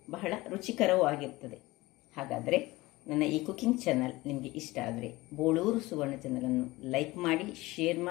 ಬಹಳ ರುಚಿಕರವೂ ಆಗಿರ್ತದೆ. ಹಾಗಾದರೆ ನನ್ನ ಈ ಕುಕಿಂಗ್ ಚಾನಲ್ ನಿಮಗೆ ಇಷ್ಟ ಆದರೆ ಬೋಳೂರು ಸುವರ್ಣ ಚಾನಲನ್ನು ಲೈಕ್ ಮಾಡಿ, ಶೇರ್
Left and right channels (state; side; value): quieter; right; 20.2 dB